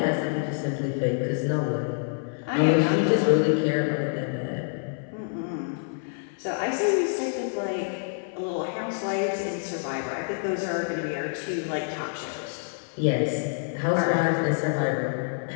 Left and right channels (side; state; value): right; silent; 57 dB below the other